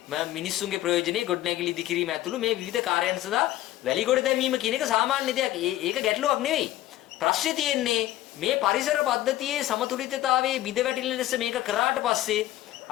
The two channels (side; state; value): right; quieter; 14.7 dB